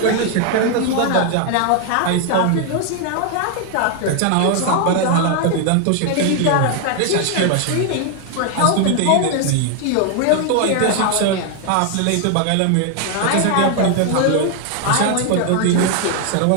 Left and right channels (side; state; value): both; different; correlation 0.00